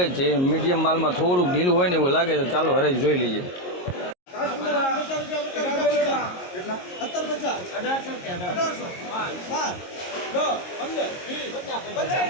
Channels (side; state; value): right; late; 22 ms